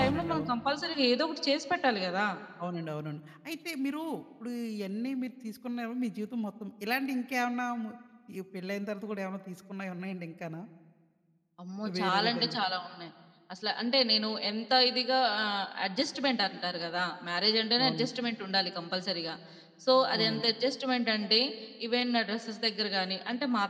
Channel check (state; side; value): identical; both; correlation 1.00